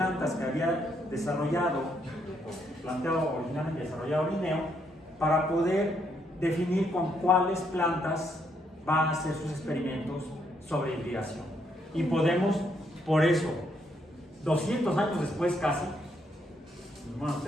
que había desarrollado, o planteado originalmente desarrollado Linneo, para poder definir con cuáles plantas va a hacer sus experimentos sobre hibridación. Y podemos, por eso, 200 años después casi, bueno,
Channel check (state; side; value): normal; both; correlation 0.74